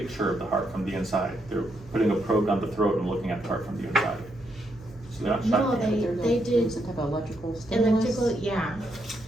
of the heart from the inside. They're putting a probe down the throat and looking at the heart from the inside. So they're not No, shocking. they did Some type of electrical stimulus? electrical, yeah.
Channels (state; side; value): noise; right; hum, 22 dB below the sound